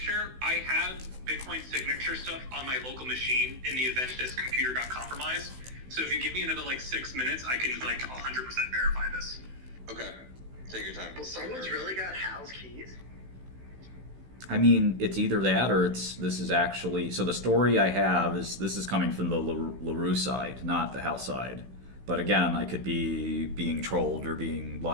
I have Bitcoin signature stuff on my local machine in the event this computer got compromised. So if you give me another 6 minutes, I can 100% verify this. Okay, take your time. Well, someone's really got Hal's keys. I mean, it's either that or this is actually. So the story I have is this is coming from the LaRue side, not the Hal side. But again, I could be being trolled or being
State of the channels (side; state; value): left; late; 16 ms